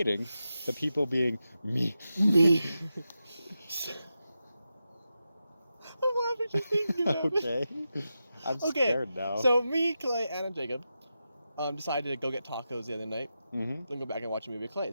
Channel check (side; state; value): both; inverted; correlation -0.90